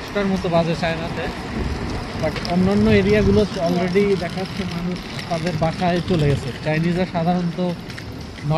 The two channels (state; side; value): identical; both; correlation 1.00